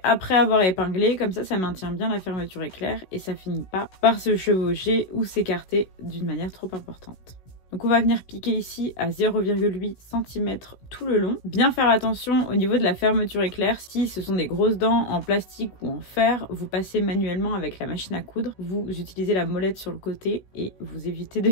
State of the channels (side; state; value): right; late; 16 ms